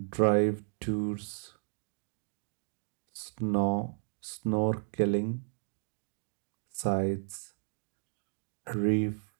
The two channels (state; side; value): silent; left; 55 dB below the other